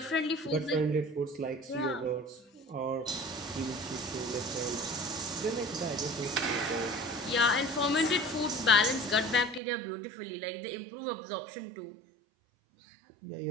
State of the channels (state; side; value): drops out; left; at 9.6 s